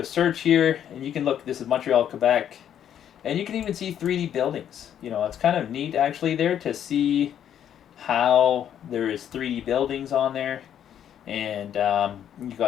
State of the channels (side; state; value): right; quieter; 9.8 dB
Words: search here, and you can look. This is Montreal, Quebec, and you can even see 3D buildings. It's kind of neat actually there to see how there is 3D buildings on there, and you